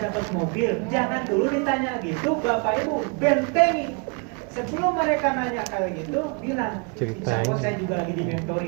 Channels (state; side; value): quieter; left; 34.7 dB